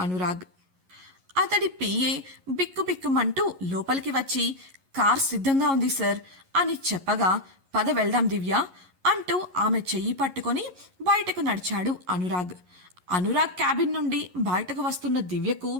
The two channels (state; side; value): late; left; 11 ms